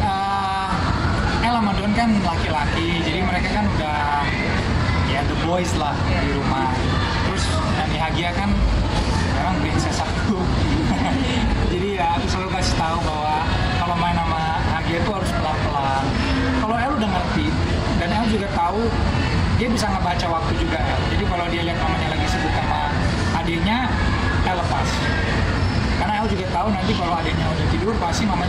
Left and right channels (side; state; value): both; identical; correlation 1.00